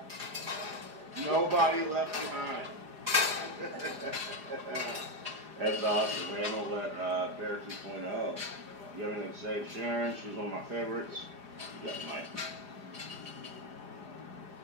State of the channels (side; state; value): left; late; 4.9 ms